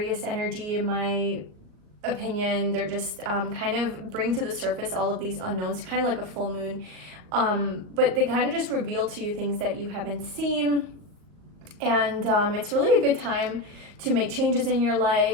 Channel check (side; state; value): left; late; 39 ms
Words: energy in my opinion. They're just kind of bring to the surface all of these unknowns, kind of like a full moon. But they kind of just reveal to you things that you haven't seen. And it's really a good time to make changes in your